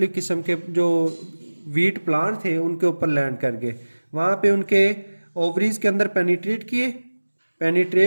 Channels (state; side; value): inverted; both; correlation -1.00